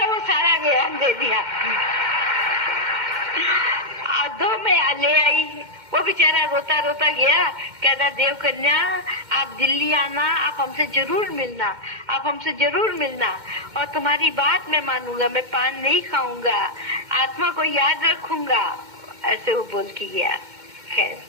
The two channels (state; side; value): late; left; 2.1 ms